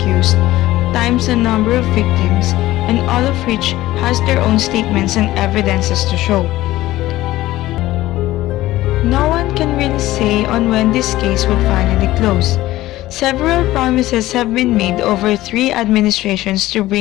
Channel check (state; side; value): quieter; right; 16.3 dB